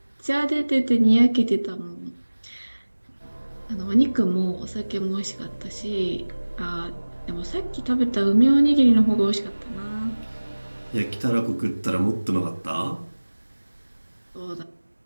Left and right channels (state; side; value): inverted; both; correlation -1.00